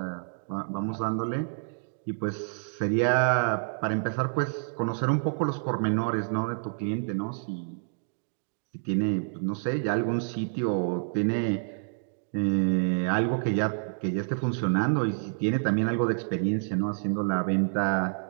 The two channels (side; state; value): left; silent; digital silence